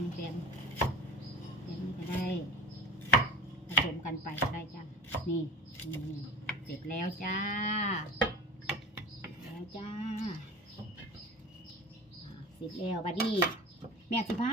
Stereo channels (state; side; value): normal; both; correlation 0.33